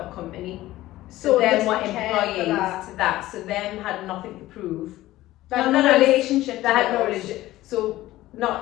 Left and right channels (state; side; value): quieter; right; 16.2 dB